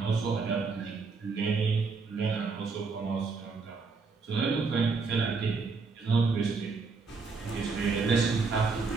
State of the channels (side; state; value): left; quieter; 4.6 dB